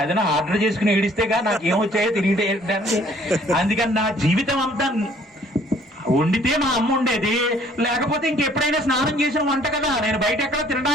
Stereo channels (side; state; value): both; normal; correlation 0.59